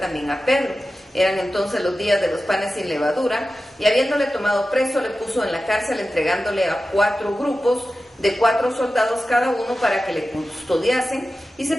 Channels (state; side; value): normal; both; correlation 0.94